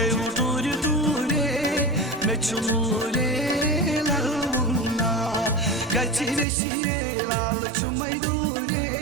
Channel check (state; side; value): drops out; left; at 6.5 s